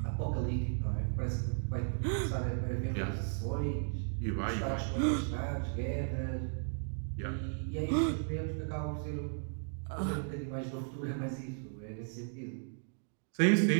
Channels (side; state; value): left; silent; digital silence